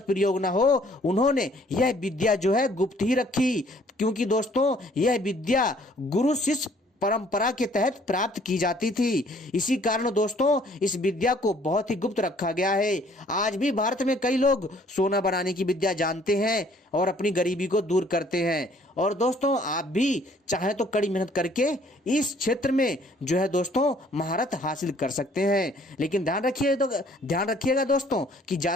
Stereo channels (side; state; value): both; normal; correlation 0.60